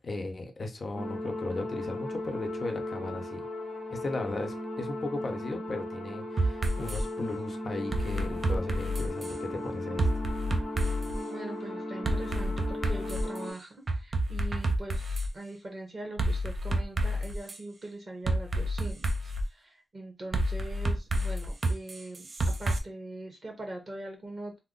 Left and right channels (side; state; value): both; normal; correlation 0.87